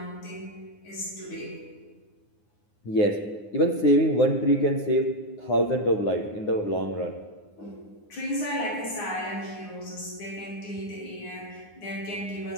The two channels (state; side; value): late; right; 9.7 ms